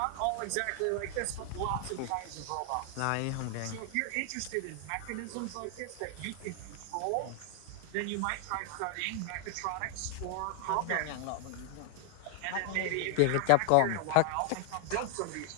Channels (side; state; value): both; different; correlation 0.00